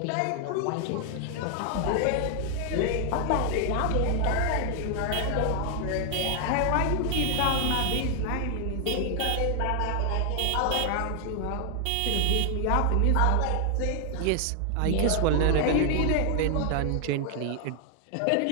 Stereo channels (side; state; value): both; different; correlation 0.00